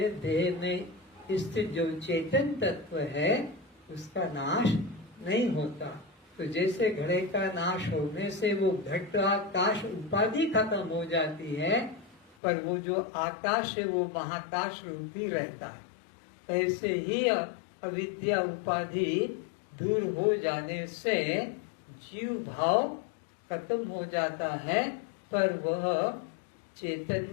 देह में स्थित जो चेतन तत्व है उसका नाश नहीं होता। तो जैसे घड़े का नाश होने से वो घट आकाश उपाधि खत्म हो जाती है, पर वो जो आकाश है वो महाकाश रूपी रहता है। ऐसे ही अविद्या उपाधि दूर हो जाने से जीव भाव खत्म हो जाता है, पर वह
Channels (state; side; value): drops out; right; at 12.4 s